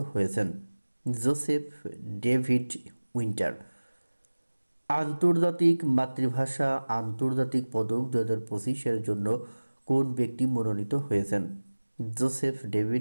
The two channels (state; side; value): inverted; both; correlation -1.00